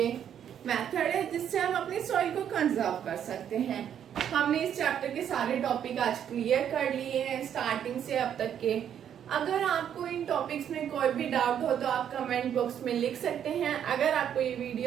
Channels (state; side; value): quieter; left; 9.3 dB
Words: मेथड है जिससे हम अपनी सॉइल को कंजर्व कर सकते हैं। हमने इस चैप्टर के सारे टॉपिक आज क्लियर कर लिए हैं स्टार्टिंग से अब तक के। अगर आपको इन टॉपिक्स में कोई भी डाउट हो तो आप कमेंट बॉक्स में लिख सकते हैं। अगर आपको ये